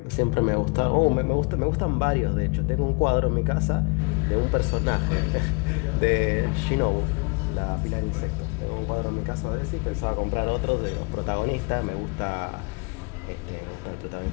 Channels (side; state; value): right; quieter; 32.3 dB